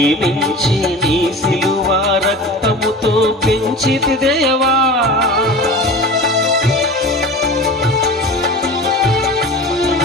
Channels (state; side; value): normal; both; correlation 0.35